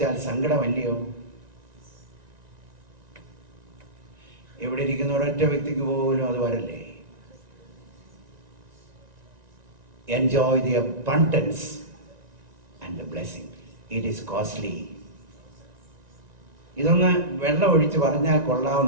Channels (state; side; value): late; left; 1.9 ms